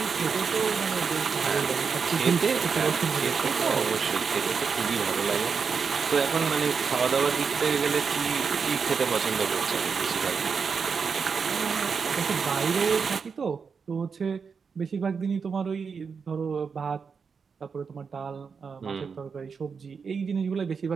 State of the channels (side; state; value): left; quieter; 5.7 dB